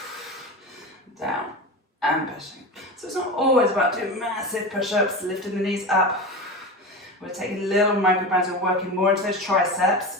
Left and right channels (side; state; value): both; normal; correlation 0.25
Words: Down and pushing. So it's not always about doing massive push-ups, lifting the knees up. We're taking a little microbands and working more into those triceps